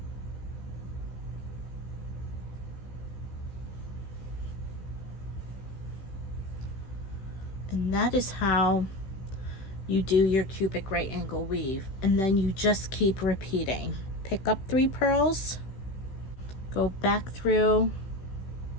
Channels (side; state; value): right; late; 16 ms